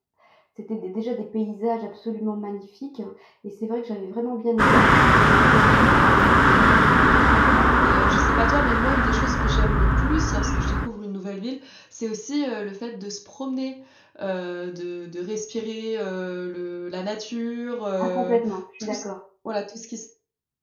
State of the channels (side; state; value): both; identical; correlation 1.00